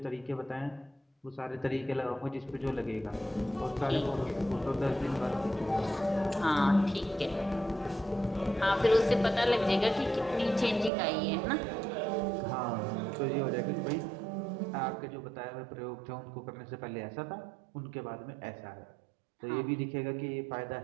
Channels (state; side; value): drops out; left; at 10.9 s